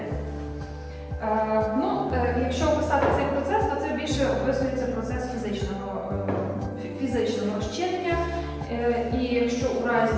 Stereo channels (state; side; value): identical; both; correlation 1.00